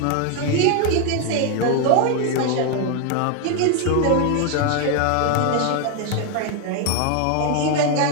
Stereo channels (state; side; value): different; both; correlation 0.01